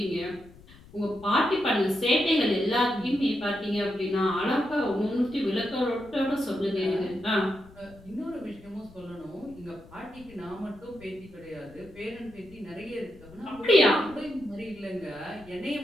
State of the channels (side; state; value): left; noise; rumble, 22 dB below the sound